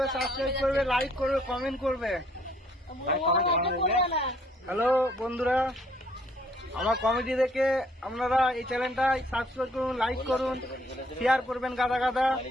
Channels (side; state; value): both; normal; correlation 0.64